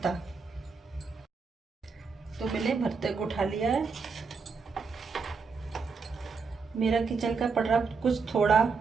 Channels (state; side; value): quieter; left; 5.0 dB